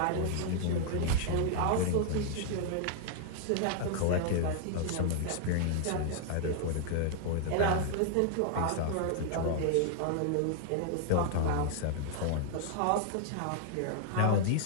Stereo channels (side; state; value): both; different; correlation -0.01